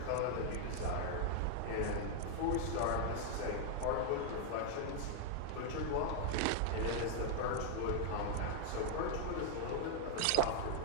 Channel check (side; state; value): both; different; correlation -0.01